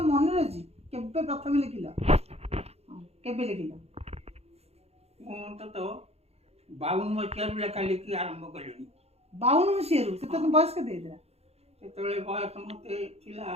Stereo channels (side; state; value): left; late; 0.30 ms